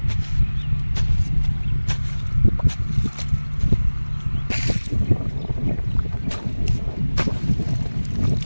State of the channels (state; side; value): inverted; both; correlation -1.00